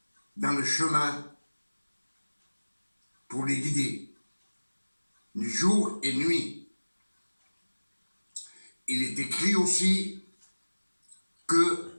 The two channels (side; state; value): both; inverted; correlation -1.00